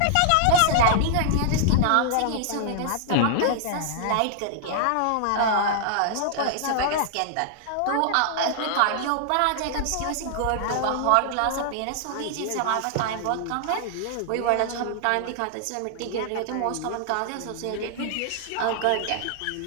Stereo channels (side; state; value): both; different; correlation -0.01